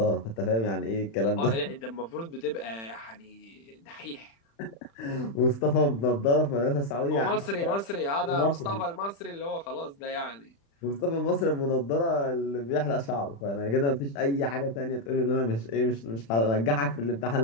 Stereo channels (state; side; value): late; right; 35 ms